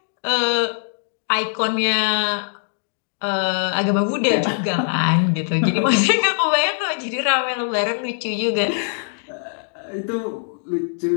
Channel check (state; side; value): silent; right; digital silence